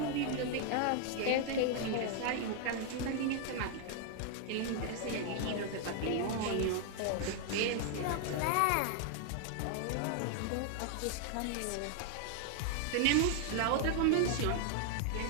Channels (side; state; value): both; different; correlation 0.00